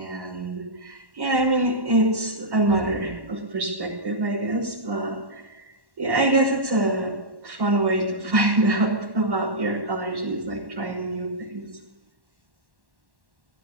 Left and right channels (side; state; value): left; late; 1.1 ms